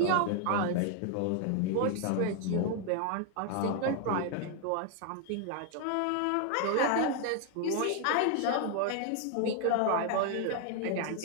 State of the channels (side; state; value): both; different; correlation 0.00